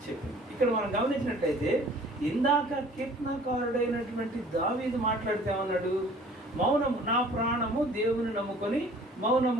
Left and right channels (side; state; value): both; normal; correlation 0.51